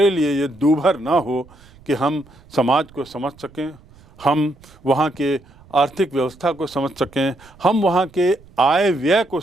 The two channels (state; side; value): noise; right; rumble, 26 dB below the sound